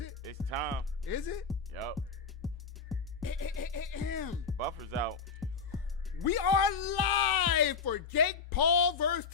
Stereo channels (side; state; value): right; quieter; 5.3 dB